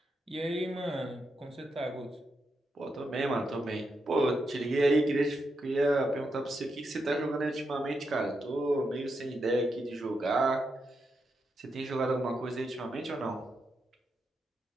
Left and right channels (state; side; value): normal; both; correlation 0.84